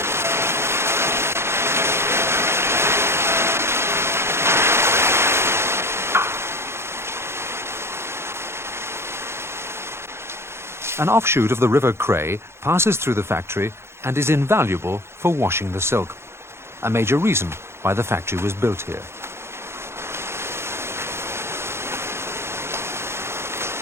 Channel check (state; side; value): late; left; 0.12 ms